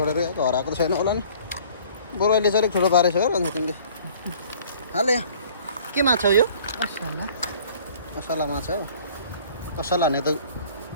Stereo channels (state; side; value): inverted; both; correlation -0.52